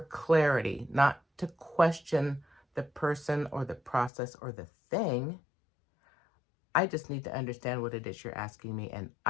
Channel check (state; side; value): drops out; right; at 4.1 s